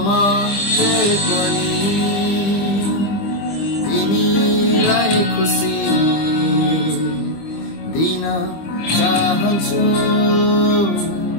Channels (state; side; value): late; right; 25 ms